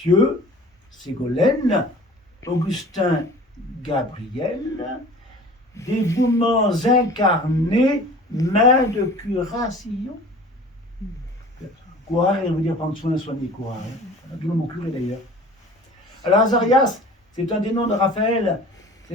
Ségolène, Augustin, Gabriel, dévouements incarnés, main de curation. Courir, il veut dire prendre soin, soigner, courir. D'où le mot curé d'ailleurs. Alors Azarias, c'est un des noms de Raphaël.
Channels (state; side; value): normal; both; correlation 0.44